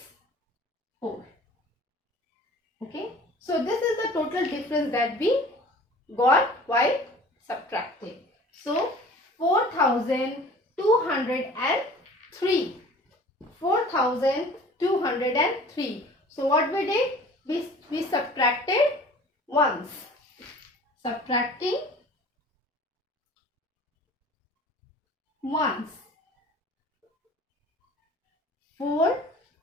4. Okay. So this is the total difference that we got while subtracting. So 4,203. 4,203. So what we did? We subtracted once. Subtracting once. 4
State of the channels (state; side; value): normal; both; correlation 0.46